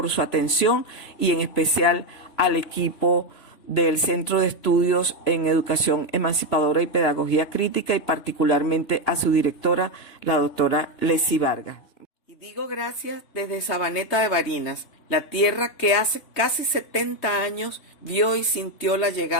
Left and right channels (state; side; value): late; right; 3.2 ms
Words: su atención y en especial al equipo del Centro de Estudios en Educación Emancipadora y Pedagogía Crítica y particularmente a su directora, la doctora Leslie Vargas. Y digo gracias desde Sabaneta de Barinas, la tierra que hace casi 70 años vio y sintió la